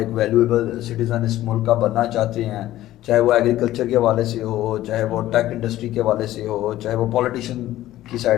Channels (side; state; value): right; quieter; 14.5 dB